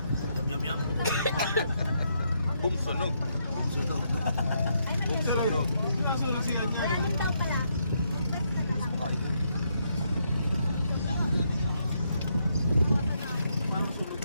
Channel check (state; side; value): inverted; both; correlation -0.77